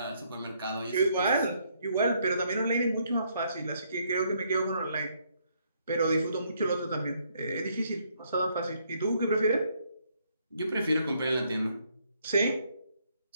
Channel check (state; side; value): inverted; both; correlation -0.70